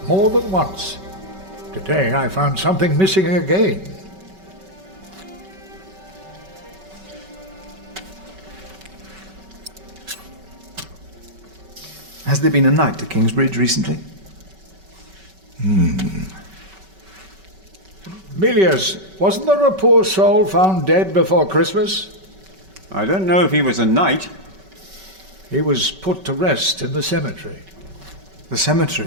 more than once. Today I found something missing again. Has there been a knight to Kingsbridge recently? Milius, wasn't there a poor soul found dead before Christmas? I don't know if he was a knight. He was put to rest in the cemetery. The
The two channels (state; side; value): late; left; 5.2 ms